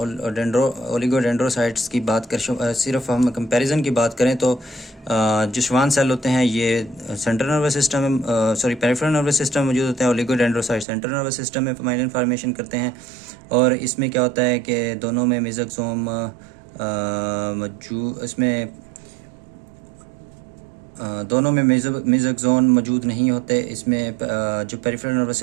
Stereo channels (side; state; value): left; drops out; at 10.9 s